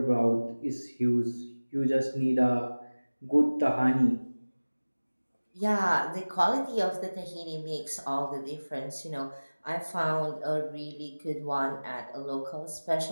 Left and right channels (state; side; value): inverted; both; correlation -1.00